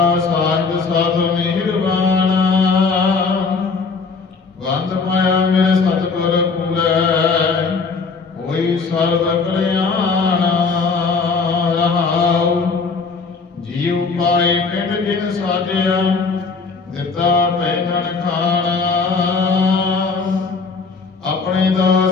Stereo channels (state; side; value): quieter; right; 4.7 dB